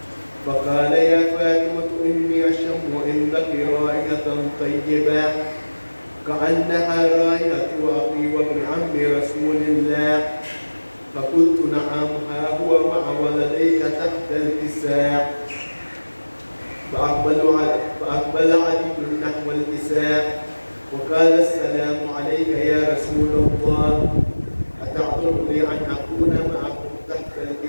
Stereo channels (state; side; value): inverted; both; correlation -1.00